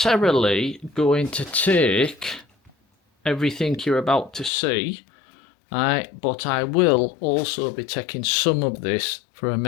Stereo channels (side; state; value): right; drops out; at 4.5 s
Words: going to take everything you're about to see, right, but I will also be taking some of this for